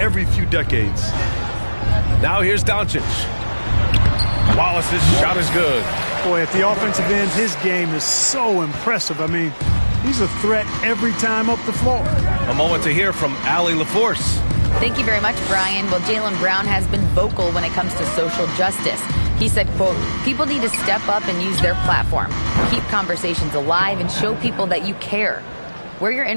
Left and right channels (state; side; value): inverted; both; correlation -1.00